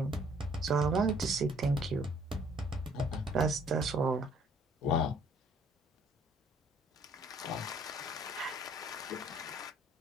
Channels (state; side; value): normal; both; correlation 0.60